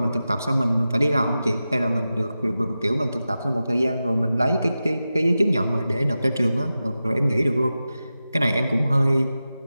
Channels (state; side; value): inverted; both; correlation -0.93